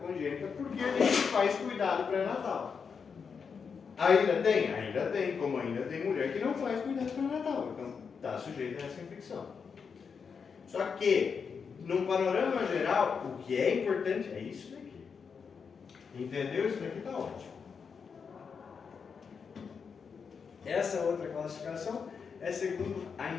porque a gente faz cuidado pré-natal. Ainda tem? Ainda tem, como ainda tem mulher que não faz cuidado pré-natal, então está sujeito a essa infecção. Só que, num panorama geral, o que é importante é isso daqui. Entendeu? Isso daqui está ótimo. Essa outra classificação é segundo a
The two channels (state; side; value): quieter; right; 6.0 dB